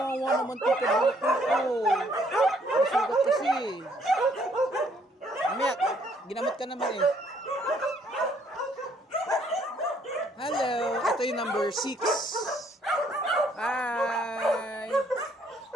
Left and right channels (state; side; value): normal; both; correlation 0.66